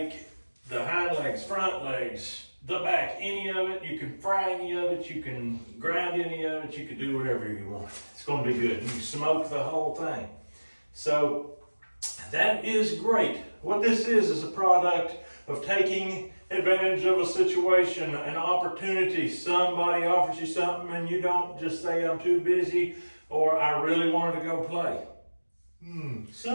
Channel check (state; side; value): inverted; both; correlation -1.00